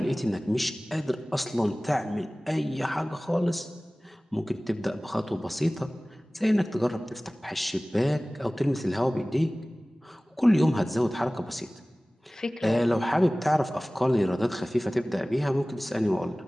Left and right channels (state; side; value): normal; both; correlation 0.98